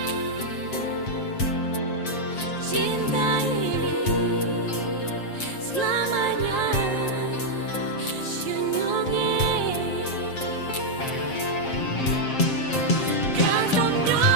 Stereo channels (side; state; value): right; late; 7.6 ms